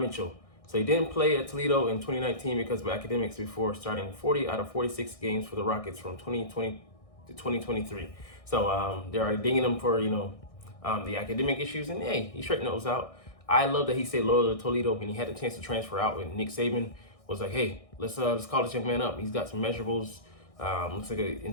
Mitchell. So he didn't play at Toledo in 2019 because of academics before starting 40 out of 46 games for the Rockets from 2020 to 2023. So they're already dinging him for, the academic issues, and hey, he straightened those out. I love that he stayed loyal to Toledo when he had the chance to transfer out, when Nick Saban was like, hey, let's call this young man up. He's got some measurables, looks like an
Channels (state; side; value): late; right; 1.6 ms